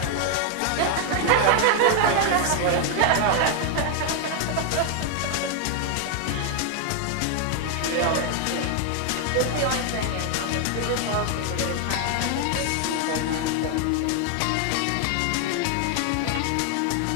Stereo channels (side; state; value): both; different; correlation 0.00